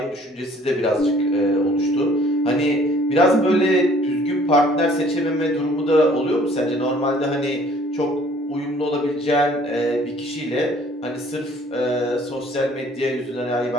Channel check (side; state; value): both; normal; correlation 0.57